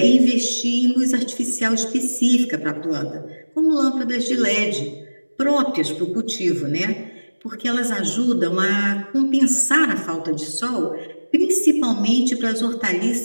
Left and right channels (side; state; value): both; inverted; correlation -1.00